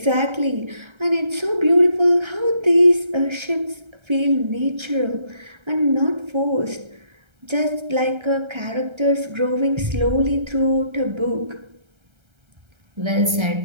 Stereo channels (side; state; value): left; late; 1.3 ms